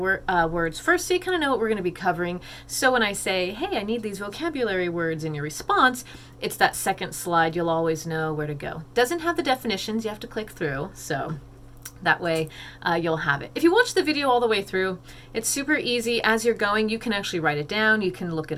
first, so you kind of know what we're going to be covering. So when I say, hey, I need these vocabulary words in your response, it's that second slide. You'll always know where to go. Doesn't have the definitions. You have to click through. So that way you'll have it. If you watch the video all the way through, it's super easy. As you're going, you can actually write it down. You can look it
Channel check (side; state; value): both; identical; correlation 1.00